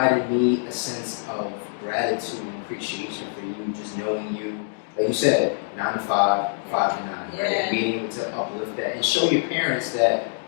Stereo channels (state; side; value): silent; right; digital silence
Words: me a sense of gratitude and appreciation for you, just knowing you, like you said, 9 to 5, 5 to 9, right? Being able to uplift that and show your parents that,